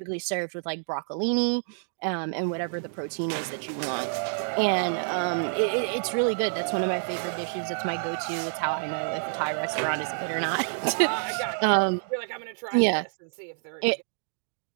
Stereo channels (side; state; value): left; silent; digital silence